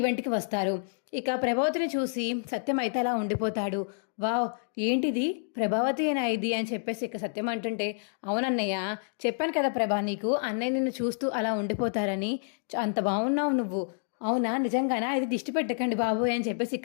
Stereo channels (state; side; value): silent; right; digital silence